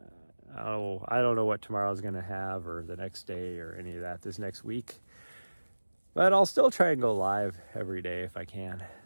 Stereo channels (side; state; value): both; inverted; correlation -1.00